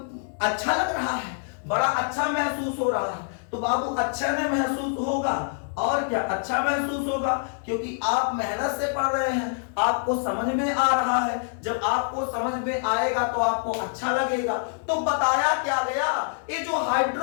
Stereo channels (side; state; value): right; silent; 61 dB below the other